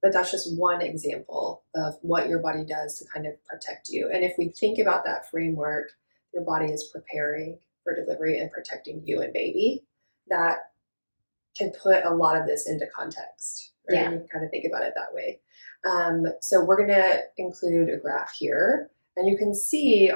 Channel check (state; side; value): inverted; both; correlation -1.00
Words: But that's just one example of what your body does to kind of protect you. And if we think about that framework, your body is preparing for delivery and protecting you and baby, that can put a lot of this into context, right? Yeah. You can kind of think about it that way. So we're going to include a graph here. And you can see